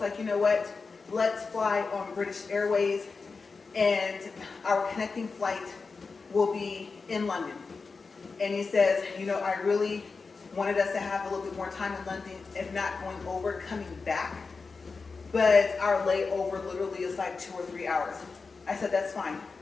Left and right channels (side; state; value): right; quieter; 4.5 dB